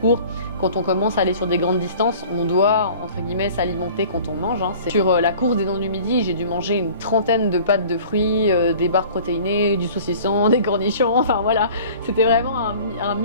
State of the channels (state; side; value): inverted; both; correlation -0.47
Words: quand on commence à aller sur des grandes distances, on doit entre guillemets s'alimenter quand on mange. Sur la course des Dents du Midi, j'ai dû manger une 30aine de pâtes de fruits, des barres protéinées, du saucisson, des cornichons, enfin voilà, c'était vraiment un